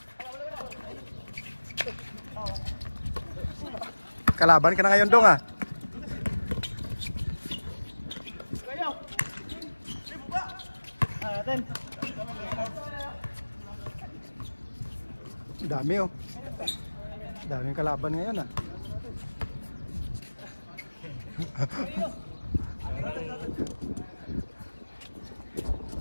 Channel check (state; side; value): inverted; both; correlation -1.00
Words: Kalaban ka na ngayon dong ah. Dami oh. Daming kalaban ngayon ah.